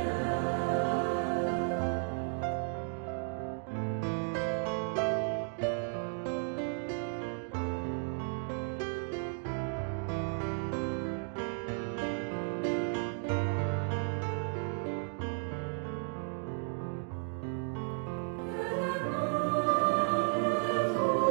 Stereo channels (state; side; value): silent; left; 55 dB below the other